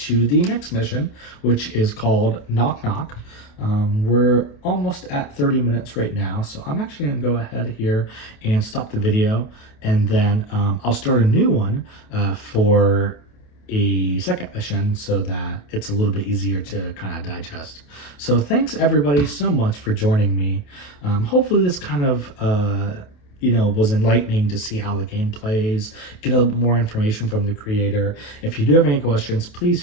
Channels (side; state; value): right; late; 28 ms